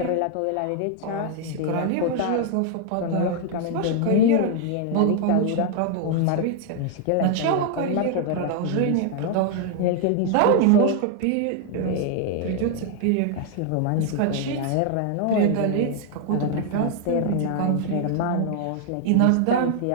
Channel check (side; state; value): both; different; correlation 0.00